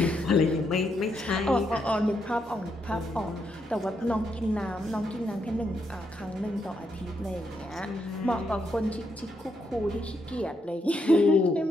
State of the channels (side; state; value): both; normal; correlation 0.79